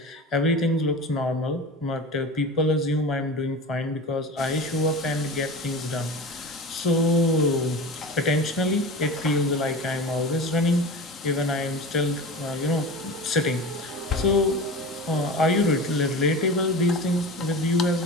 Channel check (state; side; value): normal; both; correlation 0.31